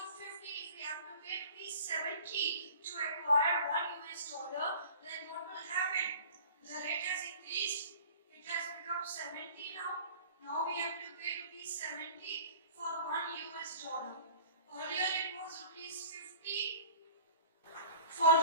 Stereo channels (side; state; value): both; inverted; correlation -0.45